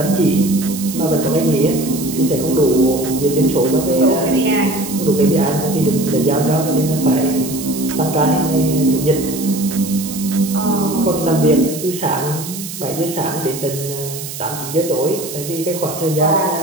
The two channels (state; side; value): noise; right; hiss, 10 dB below the sound